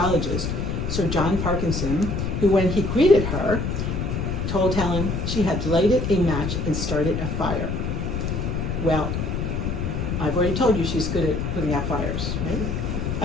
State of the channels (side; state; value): left; noise; rumble, 1 dB below the sound